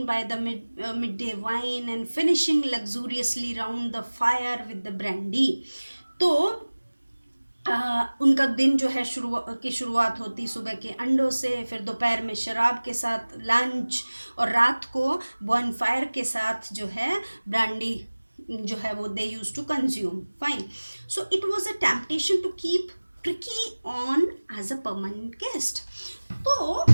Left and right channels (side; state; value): both; inverted; correlation -1.00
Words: by the midday wine and finishing luxuriously round the fire with the brandy. तो उनका दिन जो है शुरुआत होती सुबह के अंडों से, फिर दोपहर में शराब के साथ लंच, और रात को बॉन फायर के साथ जो है ब्रांडी जो है वो they use to consume. Fine. So it was a temptation to keep Tricki on as a permanent guest. तो